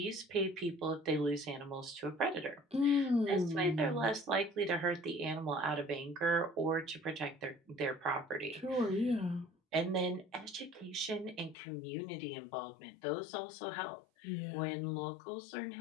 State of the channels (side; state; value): right; drops out; at 11.6 s